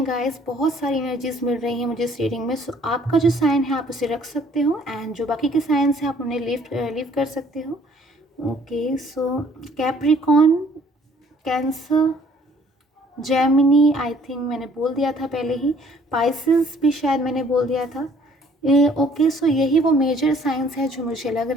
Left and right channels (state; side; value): normal; both; correlation 0.59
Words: गाइस, बहुत सारी एनर्जीज मिल रही हैं मुझे इस रीडिंग में। सो आपका जो साइन है आप उसे रख सकते हो एंड जो बाकी के साइंस हैं आप उन्हें लीव कर सकते हो। Okay, so Capricorn, cancer, Gemini I think मैंने बोल दिया था पहले ही, पाइसेस भी शायद मैंने बोल दिया था। ओके, सो यही वो मेजर साइंस है जो मुझे लग